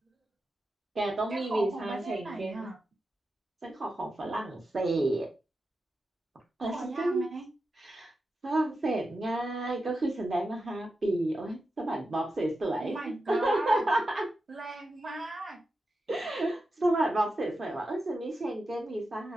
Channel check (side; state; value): both; normal; correlation 0.90